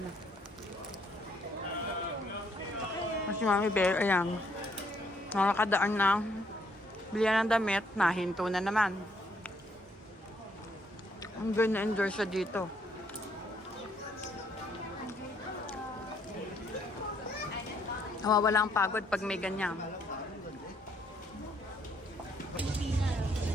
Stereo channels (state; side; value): normal; both; correlation 0.69